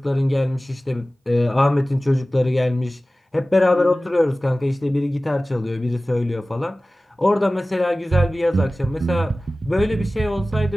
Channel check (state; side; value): normal; both; correlation 0.97